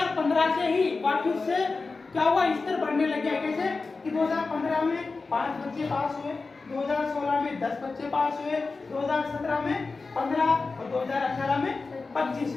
से ही वापिस से क्या हुआ, स्तर बढ़ने लग गया। कैसे कि 2015 में 5 बच्चे पास हुए, 2016 में 10 बच्चे पास हुए, 2017 में 15 और 2018 में 25,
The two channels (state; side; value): quieter; right; 4.0 dB